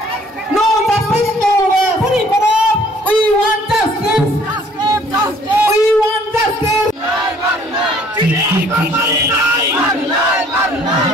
No justice, no rest. We want justice. We want justice.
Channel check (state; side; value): normal; both; correlation 0.58